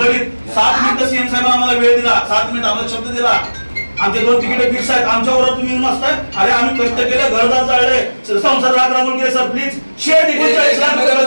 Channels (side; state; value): both; inverted; correlation -1.00